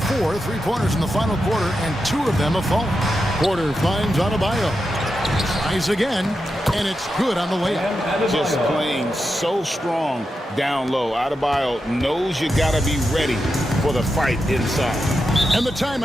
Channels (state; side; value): normal; both; correlation 0.88